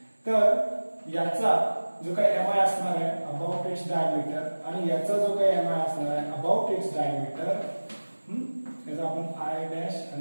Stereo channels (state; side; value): inverted; both; correlation -1.00